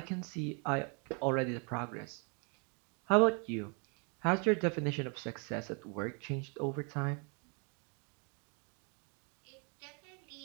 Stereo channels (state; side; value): quieter; left; 36.3 dB